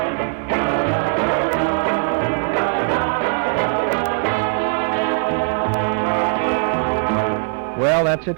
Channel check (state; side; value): quieter; left; 39.5 dB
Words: Well, that's it